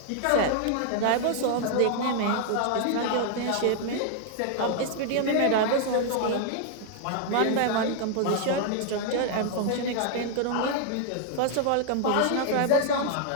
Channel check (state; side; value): different; both; correlation 0.00